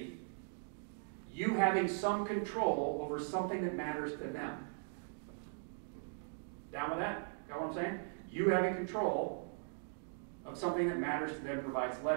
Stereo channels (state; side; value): silent; left; digital silence